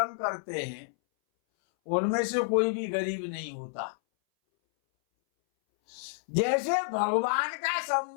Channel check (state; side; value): silent; right; 58 dB below the other